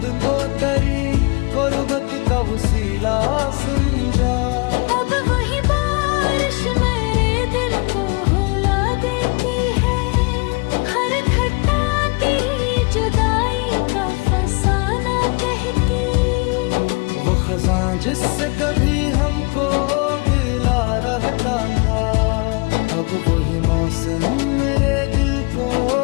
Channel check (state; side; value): quieter; right; 29.6 dB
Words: को तेरी गुर्बत का वसीला समझा। अब वही बारिश मेरे दिल को रुला देती है, हर घटा तेरी जुदाई का फसाना कहती। वो खजां जिससे कभी हमको गिला रहता था, अब वही मौसम मेरे दिल को